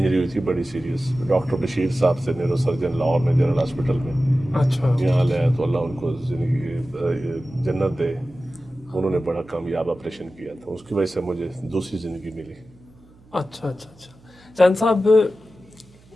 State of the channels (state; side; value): noise; right; hum, 28 dB below the sound